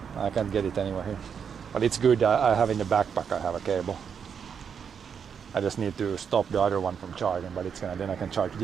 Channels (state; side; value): quieter; left; 7.1 dB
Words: I can't get it anywhere here. But it's good. I have in the backpack. I have a cable. I just need to stop the other one from charging, but it's gonna. Then I can charge